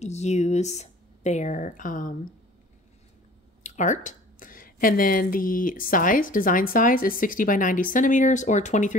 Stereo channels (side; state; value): both; normal; correlation 0.47